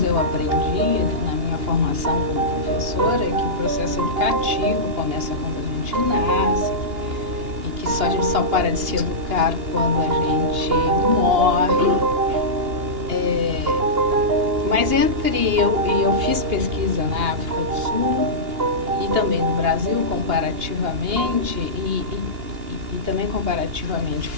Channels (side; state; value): left; late; 2.8 ms